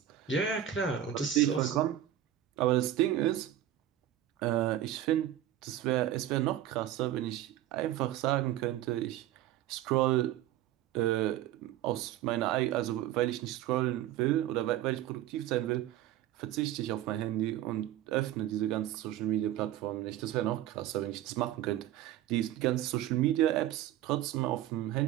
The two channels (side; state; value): left; quieter; 12.4 dB